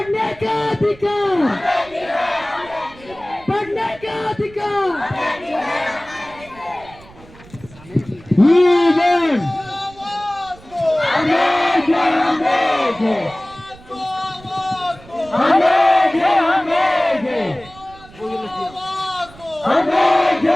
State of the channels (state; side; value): noise; right; rumble, 22 dB below the sound